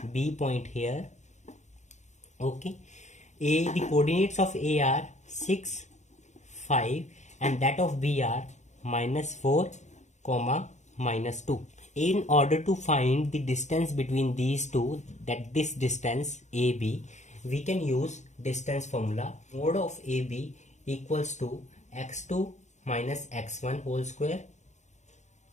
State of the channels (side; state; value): right; late; 0.34 ms